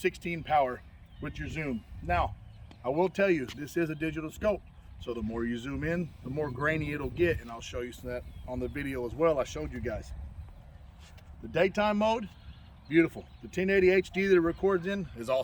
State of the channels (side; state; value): both; identical; correlation 1.00